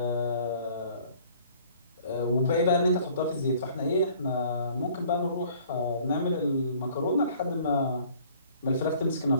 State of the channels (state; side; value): inverted; both; correlation -0.54